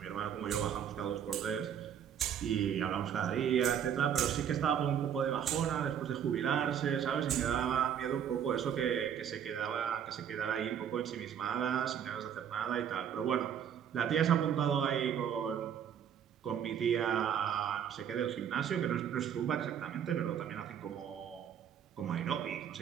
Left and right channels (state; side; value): quieter; left; 8.9 dB